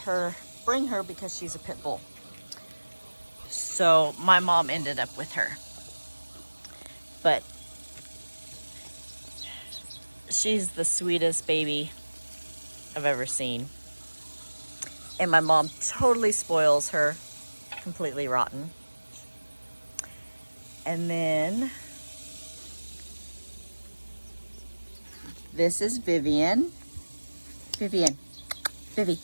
bring her because she's a pit bull. So my mom ended up with her. But she's the sweetest baby I've ever seen. And my mom totally spoils her, completely rotten. And then this is Vivian. Vivi.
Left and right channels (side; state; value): both; inverted; correlation -1.00